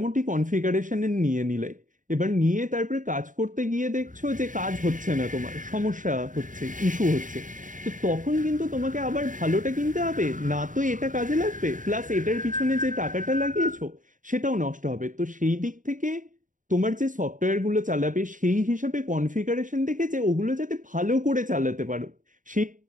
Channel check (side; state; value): left; late; 0.38 ms